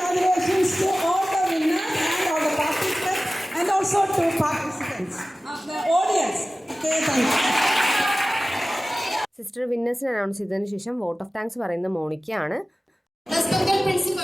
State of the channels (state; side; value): normal; both; correlation 0.96